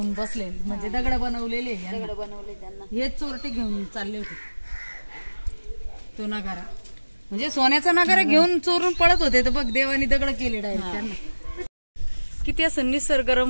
बसले म्हणजे दगड बनवलेले त्यांना हेच चोरटे घेऊन चालले होते। तो नगारा म्हणजे सोन्याचा नगारा घेऊन चोरून पळत होते, तर बघ देवानी दगड केले डायरेक्ट त्यांना। किती असं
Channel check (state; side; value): inverted; both; correlation -1.00